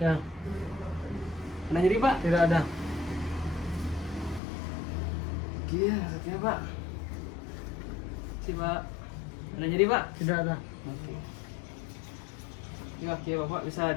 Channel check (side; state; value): right; drops out; at 4.4 s